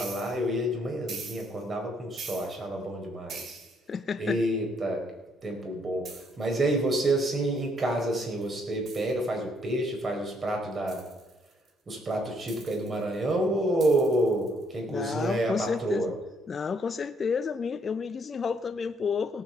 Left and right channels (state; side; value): normal; both; correlation 0.70